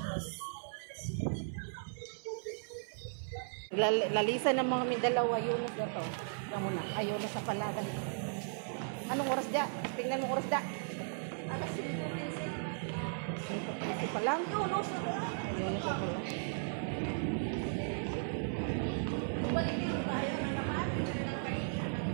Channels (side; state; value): left; silent; 54 dB below the other